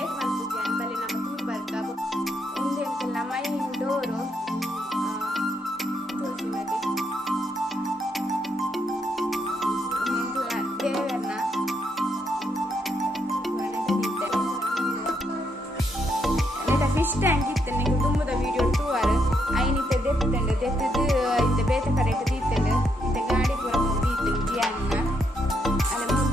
ಮಾಡ್ತಿದ್ದೆ ಬಲೆ ನಮ್ಮ ತೂರು ಬರ್ಕ ಉಂದೆಂತೆಲ್ಲ ಮೈನ್ ಡೋರು ತುಳಸಿ ಮನೆ ದೇವರನ್ನ ಫಿಶ್ ಟ್ಯಾಂಕ್ ಇತ್ತು ನೀವು ತುಂಬದ ವಿಡಿಯೋ ಟೂರ್ ಐನಿತ್ತ ದೆತ್ತಂಡು ದೆತ್ತದು ಇಂದ ಬೇತೆ ಕಡೆ ದೀತಂಡು ಇಂದ ಗಾಡಿ ಪೂರ ದೀತು ಜಿಯನ್ನ ಅಲ್ಲಿ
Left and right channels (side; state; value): both; normal; correlation 0.77